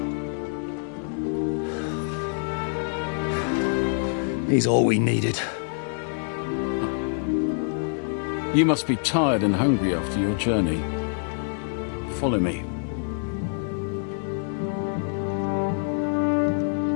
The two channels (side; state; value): right; silent; digital silence